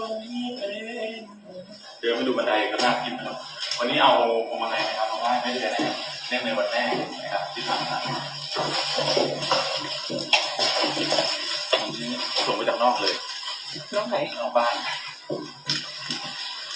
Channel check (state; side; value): identical; both; correlation 1.00